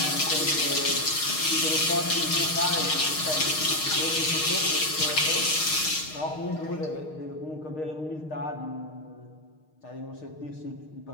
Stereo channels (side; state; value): right; late; 6.5 ms